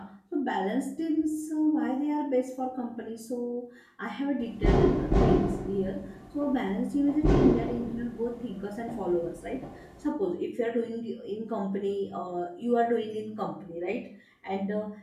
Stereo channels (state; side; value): identical; both; correlation 1.00